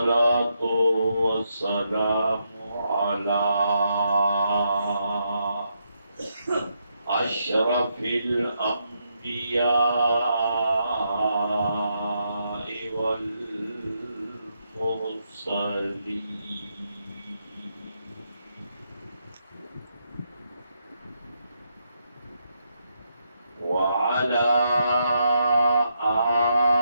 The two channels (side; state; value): both; inverted; correlation -0.80